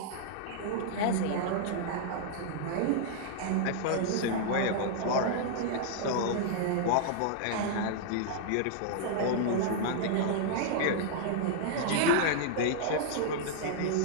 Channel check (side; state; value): both; different; correlation -0.01